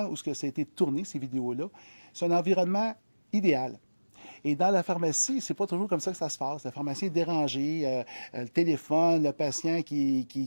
où ça a été tourné, ces vidéos-là, c'est un environnement idéal. Et dans la pharmacie, c'est pas toujours comme ça que ça se passe. La pharmacie est dérangée, le téléphone, le patient qui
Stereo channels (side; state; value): both; inverted; correlation -1.00